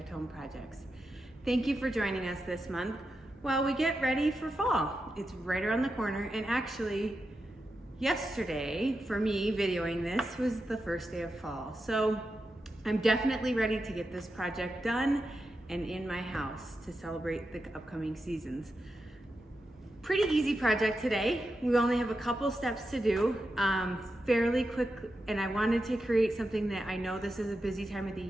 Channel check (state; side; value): normal; both; correlation 0.89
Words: Home Projects. Thank you for joining us this month while we get ready for fall. It's right around the corner, and actually yesterday, for me videoing this, was the first day of fall. So I'm definitely ready to get this project done and in my house to celebrate the upcoming seasons. Pretty easy project today. We only have a couple steps to do, fairly quick, and I wanted to create something that I know this is a busy time of the